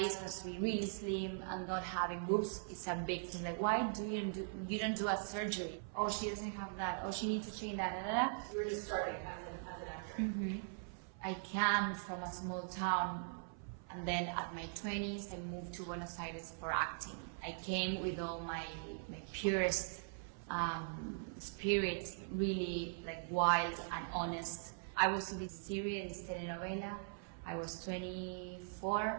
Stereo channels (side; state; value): left; silent; 50 dB below the other